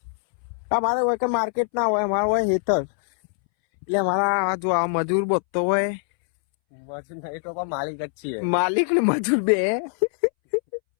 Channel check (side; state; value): right; silent; 63 dB below the other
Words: અમારે હોય કે માર્કેટ ના હોય, અમારે હોય ખેતર. એટલે અમારા જો આ મજૂર બધતો હોય, માલિક જ છીએ, માલિક ને મજૂર બે.